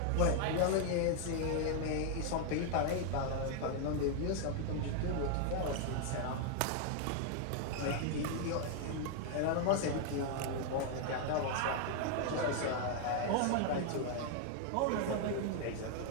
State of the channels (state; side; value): different; both; correlation 0.00